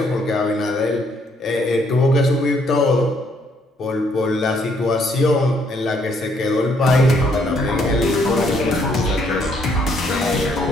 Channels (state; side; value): normal; both; correlation 0.69